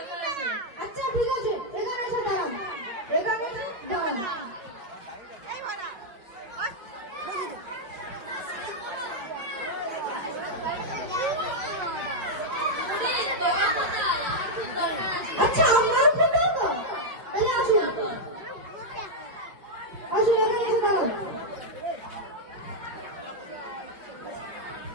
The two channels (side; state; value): left; late; 5.3 ms